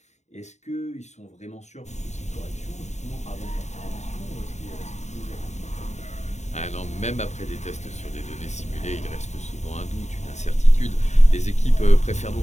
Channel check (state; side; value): late; right; 0.33 ms